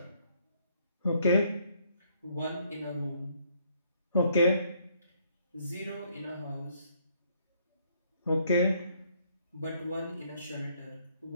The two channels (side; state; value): both; inverted; correlation -0.68